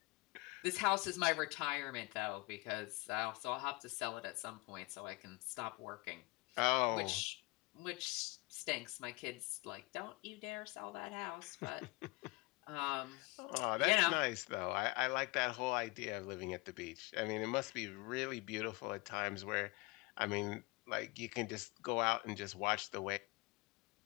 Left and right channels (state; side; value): quieter; right; 24.8 dB